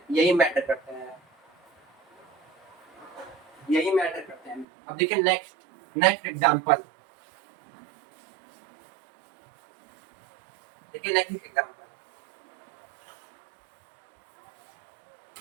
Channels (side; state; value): left; drops out; at 4.7 s